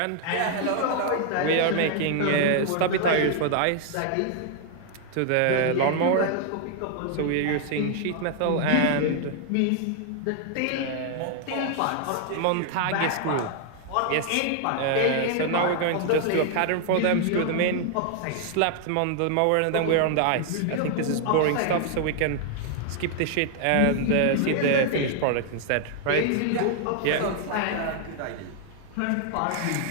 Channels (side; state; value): both; different; correlation 0.00